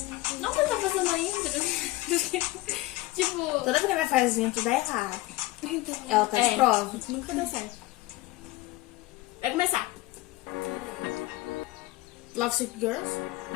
Não que eu tô fazendo ainda. Tipo... Toda vez que a minha faz intro dá errado. Então, Ela tá de prova. Nunca dá certo. Vai começar. Love Sick Girls?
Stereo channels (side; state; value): right; quieter; 19.2 dB